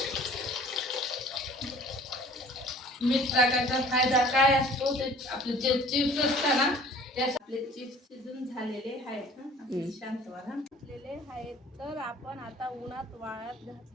मीठ टाकायचा फायदा काय असतो, ते आपले जे चिप्स असतात ना, त्यास आपले चिप्स शिजून झालेले आहेत. शांत व्हा. घातलेले आहेत. तर आपण आता उन्हात वाळत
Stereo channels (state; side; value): normal; both; correlation 0.50